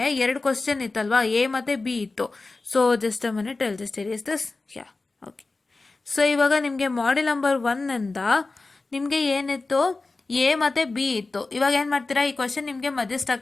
2 ಕ್ವಶನ್ ಇತ್ತಲ್ವಾ, ಎ ಮತ್ತು ಬಿ ಇತ್ತು. So just a minute, I'll just erase this. Yeah, okay. So ಇವಾಗ ನಿಮಗೆ ಮಾಡ್ಯೂಲ್ ನಂಬರ್ 1ಇಂದ ನಿಮಗೆ ಏನಿತ್ತು, ಎ ಮತ್ತು ಬಿ ಇತ್ತು. ಇವಾಗ ಏನು ಮಾಡ್ತೀರಾ, ಈ ಕ್ವಶನ್ ನಿಮಗೆ ಮಧ್ಯೆ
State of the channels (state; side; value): quieter; right; 3.5 dB